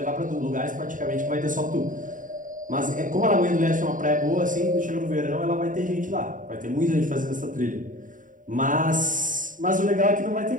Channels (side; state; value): left; late; 0.38 ms